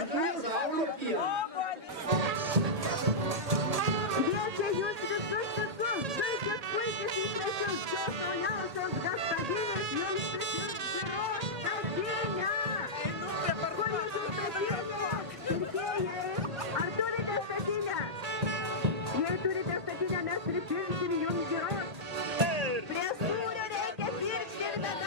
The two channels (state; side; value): late; left; 1.8 ms